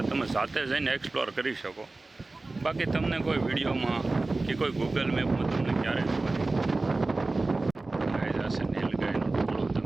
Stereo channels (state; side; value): quieter; left; 3.3 dB